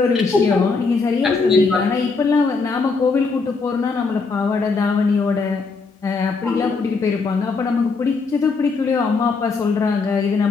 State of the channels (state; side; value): quieter; right; 4.4 dB